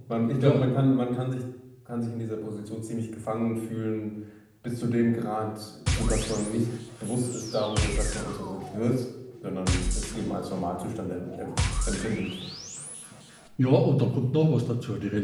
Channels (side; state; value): both; identical; correlation 1.00